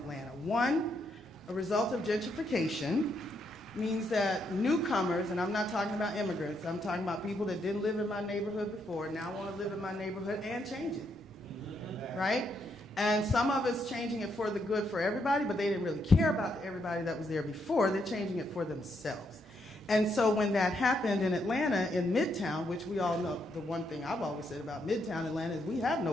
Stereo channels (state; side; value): normal; both; correlation 0.77